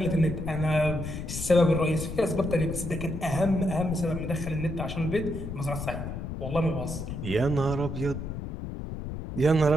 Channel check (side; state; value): left; noise; rumble, 6 dB below the sound